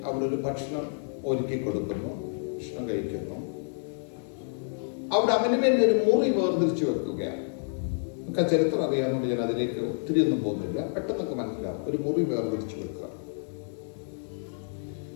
അവളൊരു ഭക്ഷണം ഒരുക്കി കൊടുക്കുന്നു, ഭക്ഷണം കഴിക്കുന്നു. അവിടെ അവന് വേണ്ടി ഒരു മുറി വേർതിരിച്ചു വെക്കുകയാണ്. നമുക്ക് ആ ചരിത്രം അറിയാവുന്നതുകൊണ്ട് ഞാൻ അതിലേക്ക് ഒത്തിരി ഒന്നും പോകുന്നില്ല, പെട്ടെന്നൊക്കെ മനസ്സിലാവും. ഒരു മുറി വേർതിരിച്ചു വെക്കുക.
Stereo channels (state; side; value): silent; right; digital silence